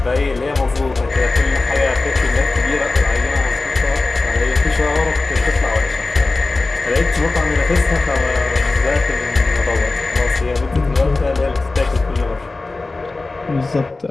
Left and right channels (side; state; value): right; quieter; 3.4 dB